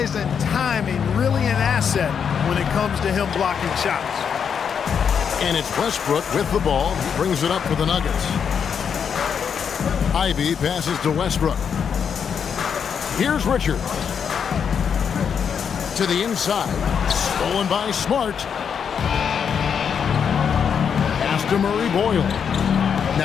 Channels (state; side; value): quieter; right; 7.2 dB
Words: and timing really an asset when it comes to him blocking shots. And it's Westbrook with the ball. He brings it up for the Nuggets. Ivy passes to Westbrook. Here's Richards. To the inside. Stolen by Smart. Pass to Murray Boyle.